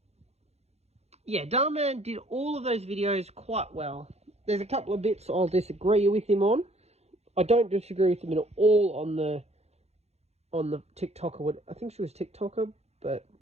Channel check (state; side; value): late; left; 0.31 ms